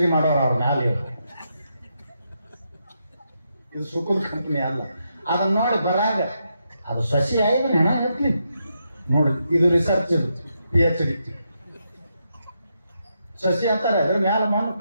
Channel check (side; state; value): both; inverted; correlation -0.82